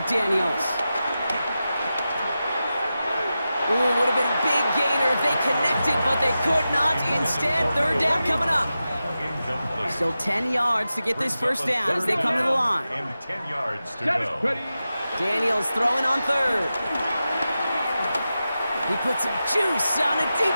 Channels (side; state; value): both; inverted; correlation -0.92